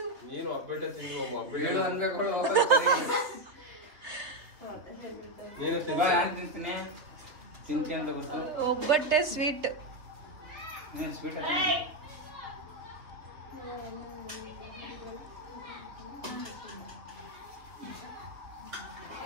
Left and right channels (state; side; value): late; left; 3.4 ms